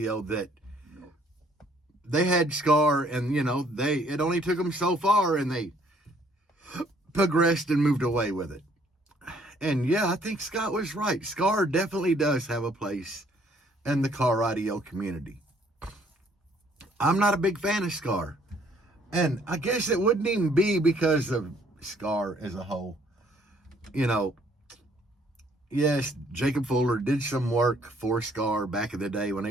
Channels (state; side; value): normal; both; correlation 0.63